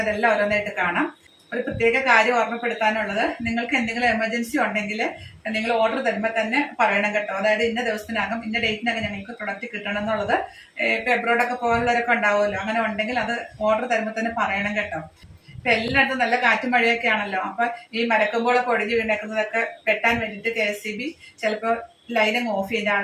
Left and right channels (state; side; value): identical; both; correlation 1.00